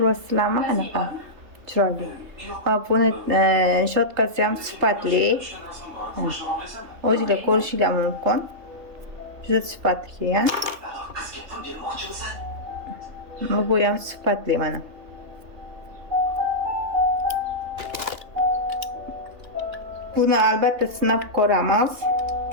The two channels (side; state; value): left; late; 3.3 ms